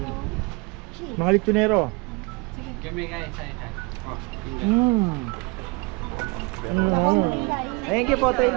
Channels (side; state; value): left; quieter; 28.2 dB